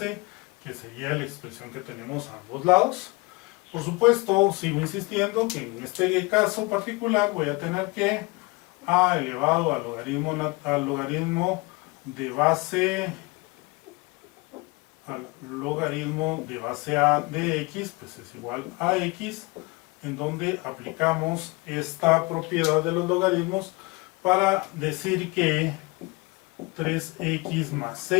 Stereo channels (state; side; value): quieter; right; 25.2 dB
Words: que sería la expresión que tenemos a ambos lados. Por supuesto, sigo insistiendo que en este caso particular voy a tener que a elevado al logaritmo de base a de x, pues es igual a x, en donde aplicamos esta propiedad de los logaritmos para decir que 3x más